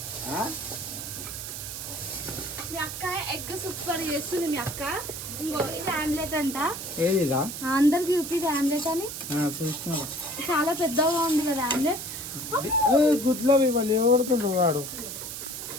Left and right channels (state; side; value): noise; right; hiss, 7 dB below the sound